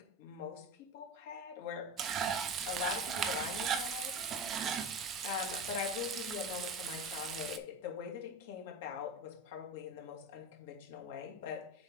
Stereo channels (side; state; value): both; normal; correlation 0.27